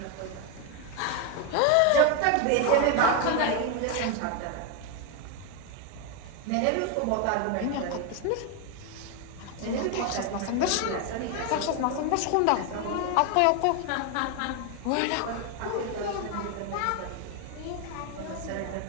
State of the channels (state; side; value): different; both; correlation 0.01